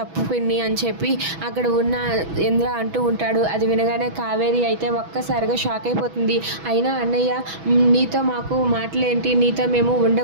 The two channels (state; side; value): late; left; 6.1 ms